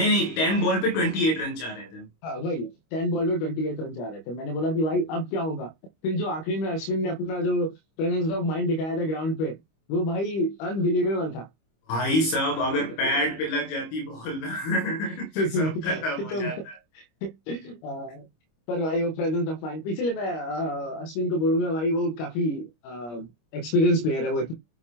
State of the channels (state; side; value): late; right; 25 ms